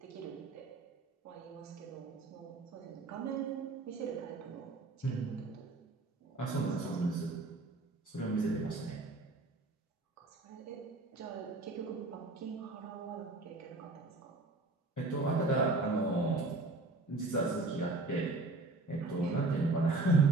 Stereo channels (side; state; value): left; quieter; 3.2 dB